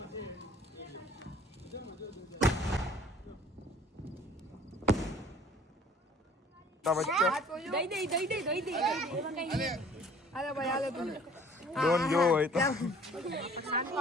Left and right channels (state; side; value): normal; both; correlation 0.52